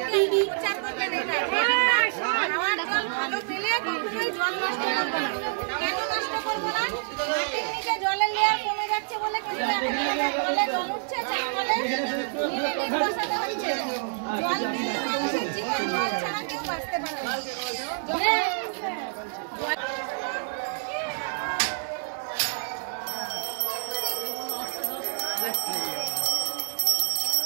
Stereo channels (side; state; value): left; silent; 60 dB below the other